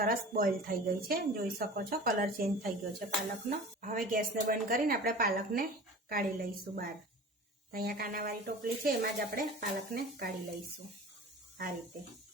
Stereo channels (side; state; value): both; normal; correlation 0.39